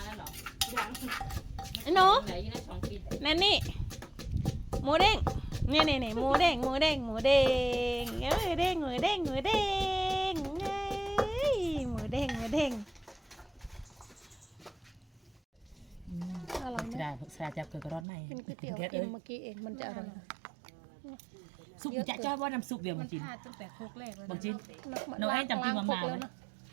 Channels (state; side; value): drops out; left; at 18.1 s